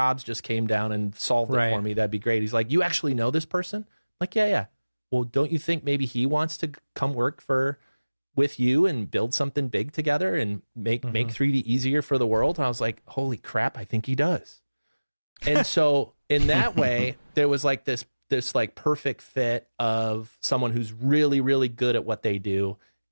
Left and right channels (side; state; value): both; inverted; correlation -1.00